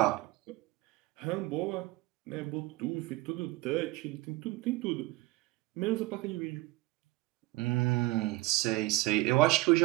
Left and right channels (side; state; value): left; quieter; 20.0 dB